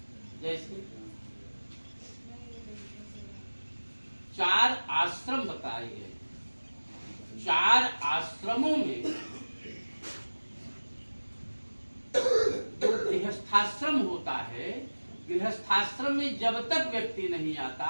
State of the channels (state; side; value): inverted; both; correlation -1.00